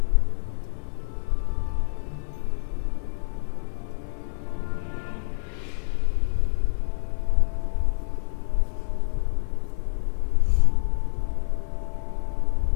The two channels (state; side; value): silent; right; 59 dB below the other